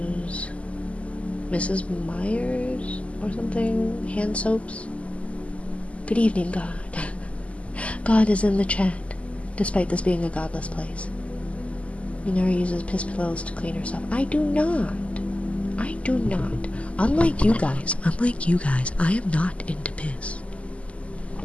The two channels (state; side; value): late; right; 0.063 ms